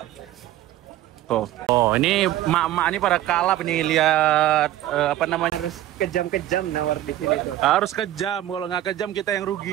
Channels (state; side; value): quieter; left; 13.8 dB